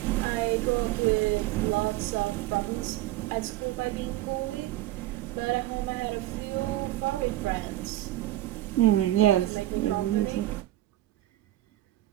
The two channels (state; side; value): quieter; left; 15.8 dB